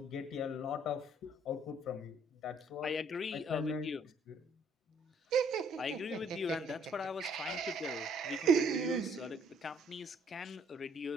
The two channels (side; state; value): both; normal; correlation 0.63